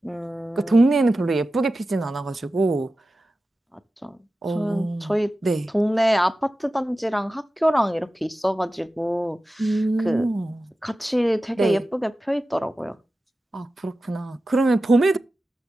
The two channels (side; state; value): both; normal; correlation 0.94